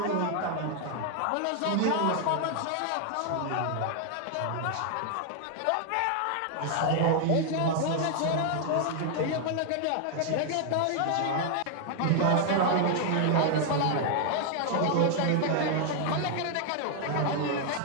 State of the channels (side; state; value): both; different; correlation 0.00